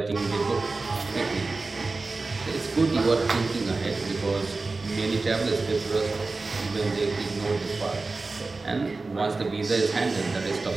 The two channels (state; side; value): quieter; left; 3.6 dB